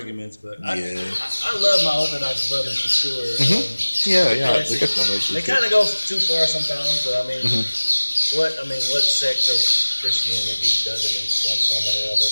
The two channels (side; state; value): both; inverted; correlation -1.00